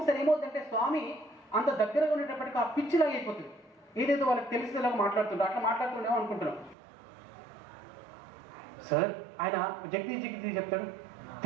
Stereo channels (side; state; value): left; drops out; at 6.8 s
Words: ఏమవుతుందంటే స్వామి అంత దగ్గరగా ఉండేటప్పటికి ఆ పిచ్చిలాగా అయిపోతుంది, ఏదైతే వాళ్ళకి తెలిసేలాగా మాట్లాడుతుంటారు, అట్లా మాట్లాడుతుండేమో అనుకుంటున్నాం. సార్ ఆయన జగదీష్ చెప్తాడు,